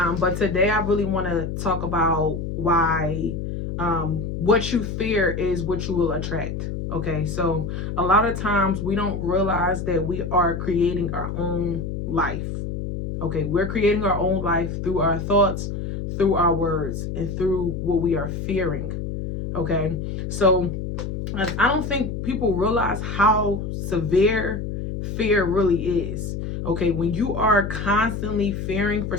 today I really want to talk about why what you fear is what you will attract. Okay, so a lot of times we don't realize that we are creating our own life. Okay, we're creating our own life through our thoughts, through our words, and through what we are fearing. Okay, so I don't think people realize how severe fear really is. Okay, when you are constantly fearing for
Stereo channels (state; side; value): noise; left; hum, 5 dB below the sound